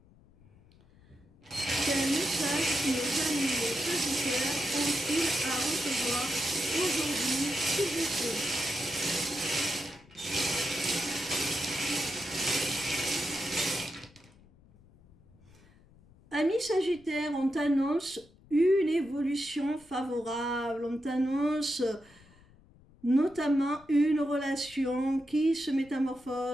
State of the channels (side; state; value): left; noise; rumble, 27 dB below the sound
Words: Quel message nos amis les Sagittaires ont-ils à recevoir aujourd'hui, s'il vous plaît? Amis Sagittaires, on t'annonce une évolution favorable, on t'annonce notamment une relation qui se